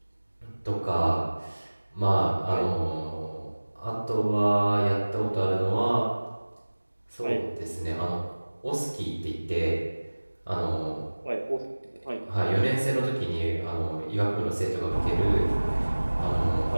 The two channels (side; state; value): both; inverted; correlation -1.00